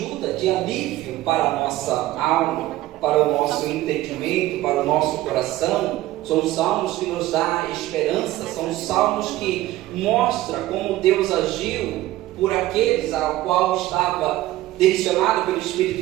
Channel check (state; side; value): quieter; left; 16.1 dB